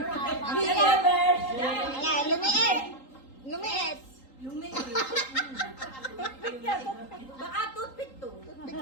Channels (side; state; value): right; late; 3.8 ms